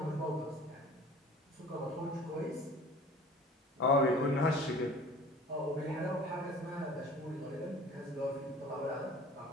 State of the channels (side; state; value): both; normal; correlation 0.46